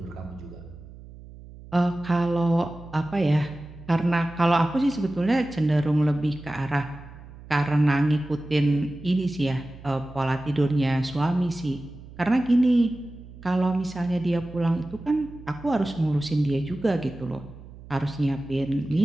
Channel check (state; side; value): noise; right; hum, 18 dB below the sound